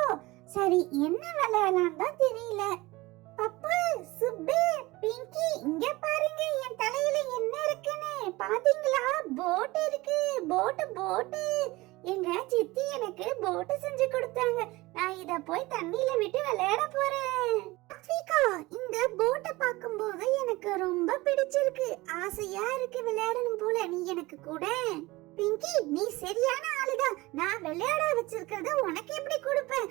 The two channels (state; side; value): quieter; left; 20.8 dB